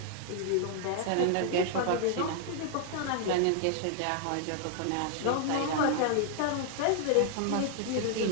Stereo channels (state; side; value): different; both; correlation 0.00